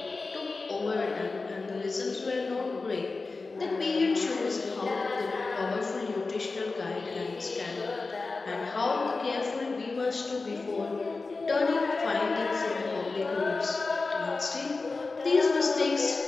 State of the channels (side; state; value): right; quieter; 3.8 dB